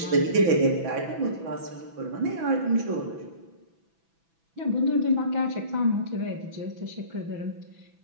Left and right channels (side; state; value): left; late; 6.0 ms